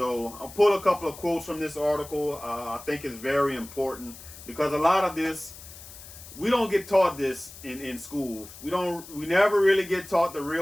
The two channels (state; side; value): noise; left; hiss, 16 dB below the sound